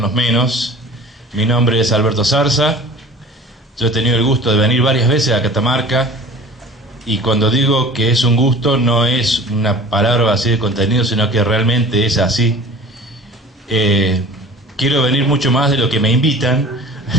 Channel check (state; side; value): normal; both; correlation 0.42